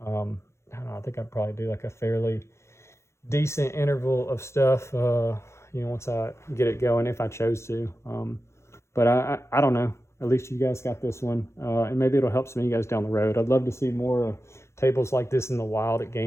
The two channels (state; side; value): late; right; 0.13 ms